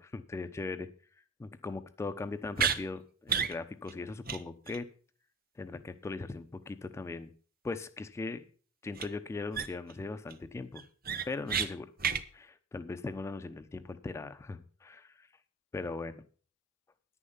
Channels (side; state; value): both; normal; correlation 0.38